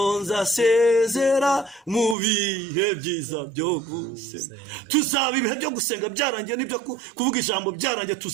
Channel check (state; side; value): drops out; left; at 2.1 s